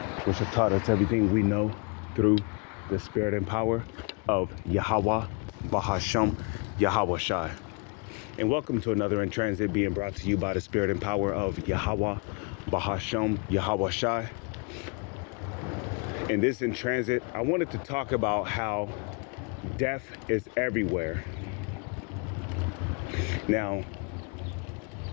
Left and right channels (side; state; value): right; quieter; 32.9 dB